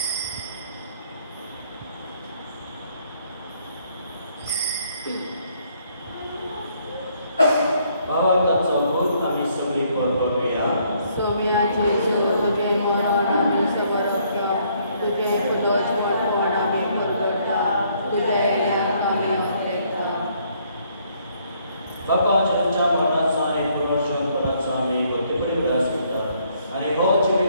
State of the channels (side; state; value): both; inverted; correlation -0.67